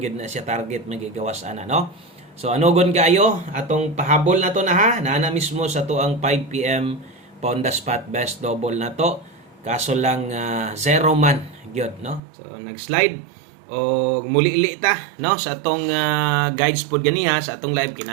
gyud na siya target magigawas ana no. So anogon kaayo atong pahabol na to na ha na mismo sa tuang 5 PM pa on the spot best double na to kaso lang zero man gyud no. So nag-slide o muli-li ta no sa atong guides pod ganiha sa atong live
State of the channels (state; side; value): drops out; left; at 12.2 s